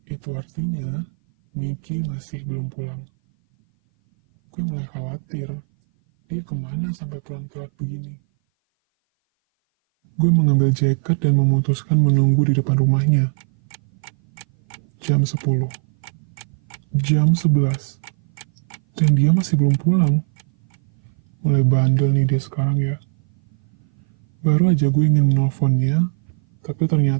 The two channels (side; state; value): left; silent; 58 dB below the other